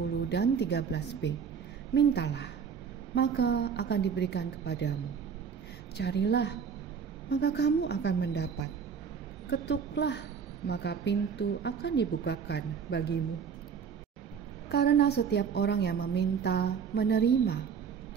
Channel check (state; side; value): quieter; left; 6.7 dB